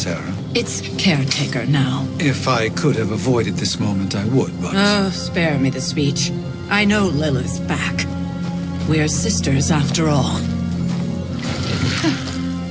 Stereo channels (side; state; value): both; identical; correlation 1.00